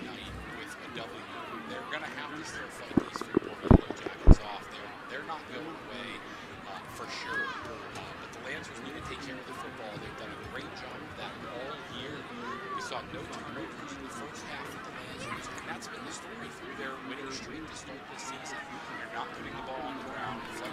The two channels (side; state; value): both; identical; correlation 1.00